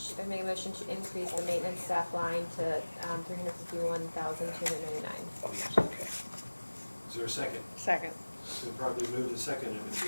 make a motion to increase the maintenance staff line to, $351,299. Oh, yes, okay. Is there a second? Second. It's been properly moved and seconded. Is there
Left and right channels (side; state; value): both; inverted; correlation -1.00